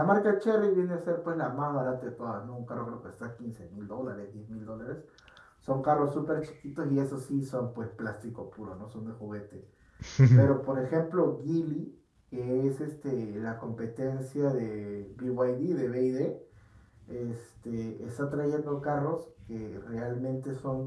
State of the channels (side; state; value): both; identical; correlation 1.00